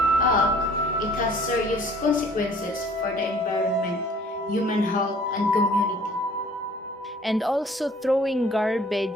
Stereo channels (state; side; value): normal; both; correlation 0.54